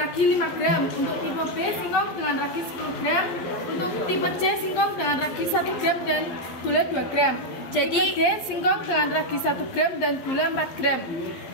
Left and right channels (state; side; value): late; right; 11 ms